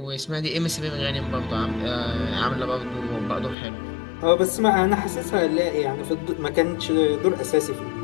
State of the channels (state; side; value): drops out; right; at 3.6 s